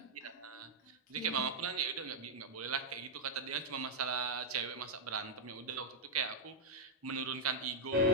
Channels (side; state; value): both; normal; correlation -0.05